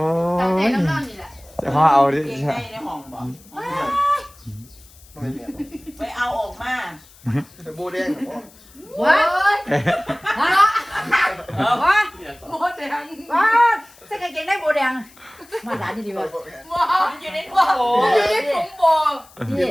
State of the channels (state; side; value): noise; left; hiss, 25 dB below the sound